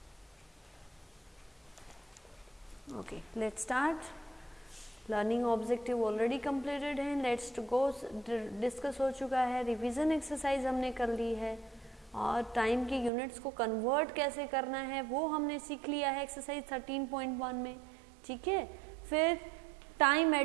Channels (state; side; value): drops out; left; at 13.1 s